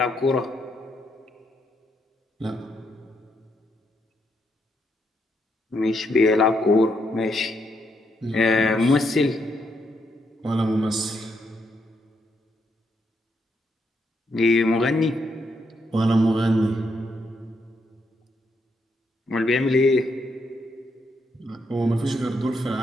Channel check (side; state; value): both; normal; correlation 0.78